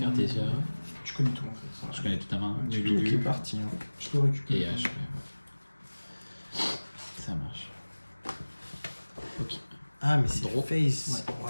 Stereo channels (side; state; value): both; inverted; correlation -1.00